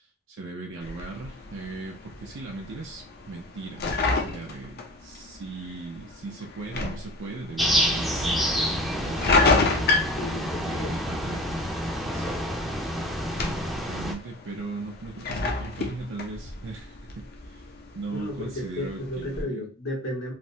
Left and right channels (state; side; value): normal; both; correlation 0.37